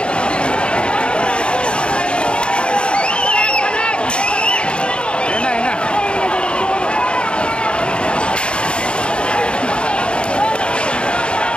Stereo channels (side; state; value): right; late; 0.053 ms